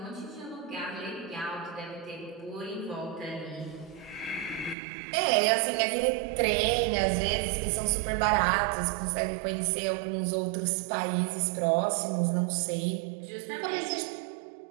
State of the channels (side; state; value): left; drops out; at 4.8 s